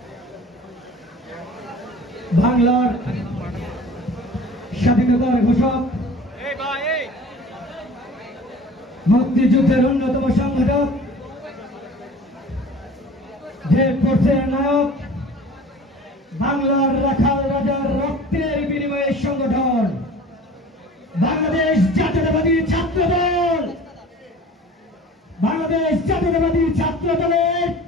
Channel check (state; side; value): normal; both; correlation 0.43